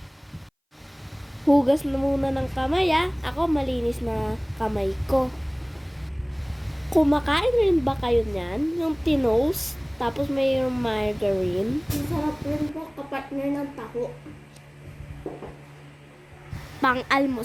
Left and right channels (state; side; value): identical; both; correlation 1.00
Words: Hugas na muna ng kamay Ako malinis na kamay ko. Kumakain rin ba kayo niyan? Yung tinos, tapos mayroong margarine. Masarap rin po kapartner ng taho.